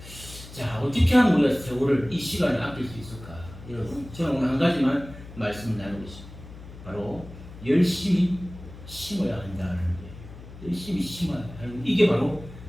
자, 어떻게 하면 우리가 세월을, 이 시간을 아낄 수 있을까? 여러분, 저는 오늘 한 가지만 말씀을 나누겠습니다. 바로 열심히 심어야 한다는 거예요. 열심히 심어야 한다. 이게 바로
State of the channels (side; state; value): left; noise; hum, 16 dB below the sound